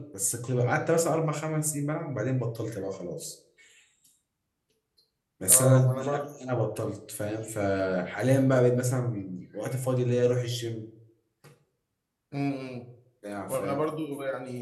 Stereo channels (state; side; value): identical; both; correlation 1.00